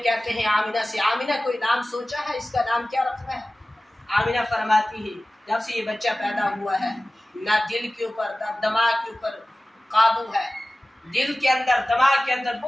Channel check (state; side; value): normal; both; correlation 0.97